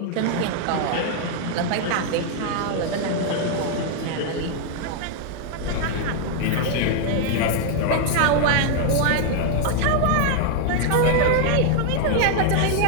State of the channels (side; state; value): both; different; correlation 0.00